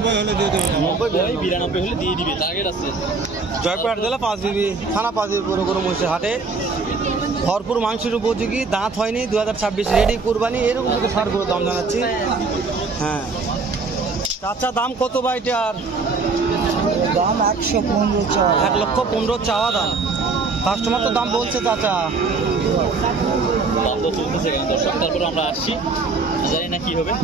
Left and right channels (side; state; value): left; quieter; 4.2 dB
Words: হলে দিয়ে দেবো। 92 হলে দিয়ে দিবে, টার্গেট আছে। জয়পুরহাট জেলা পাঁচবিবি থানা, পাঁচবিবি পুরো গরু মহিষের হাটে ভরপুর মাংসের উপযোগী, দাঁত হয়নি, 2026 রেডি কুরবানি, এরকম থেকে ষাট গরুর দাম জানাচ্ছি। হ্যাঁ চাচা, দাম কত বা এটার? দাম 115। 1,15,00,000 চাওয়া দাম। কাস্টমার তো দাম বলছে চাচা। দাম তো চলতেছে কেন দর্শক, তারপরে আমরা আসছি, জানি না কি হবে।